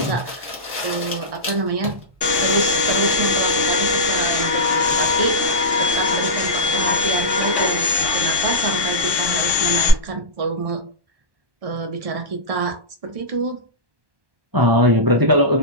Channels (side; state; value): left; late; 1.1 ms